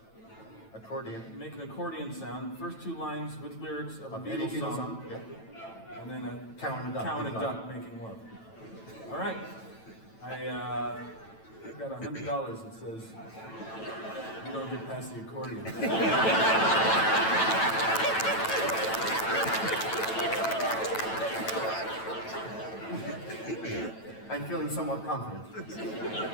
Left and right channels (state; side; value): late; right; 9.0 ms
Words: Accordion. make an accordion sound. First two lines with lyrics of a Any Beatles song, Yeah. and then a Cow and a duck. cow and a making love. duck making love. All right. I've got $100 that says you don't get past the accordion. I'm feeling somewhat confident.